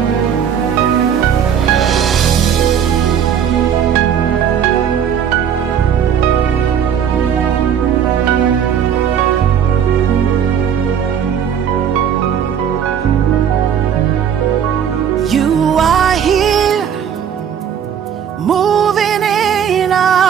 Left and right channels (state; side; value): quieter; left; 8.4 dB